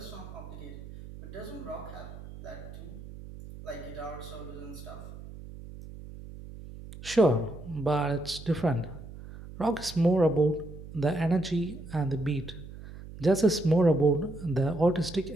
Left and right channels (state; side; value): noise; right; hum, 14 dB below the sound